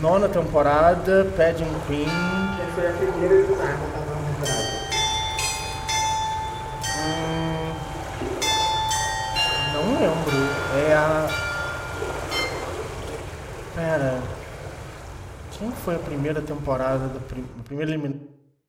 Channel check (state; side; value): identical; both; correlation 1.00